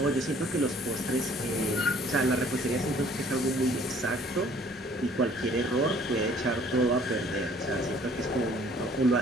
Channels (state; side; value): normal; both; correlation 0.56